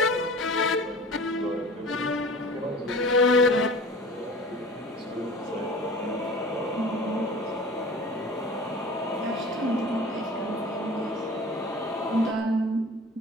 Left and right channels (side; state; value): both; normal; correlation 0.40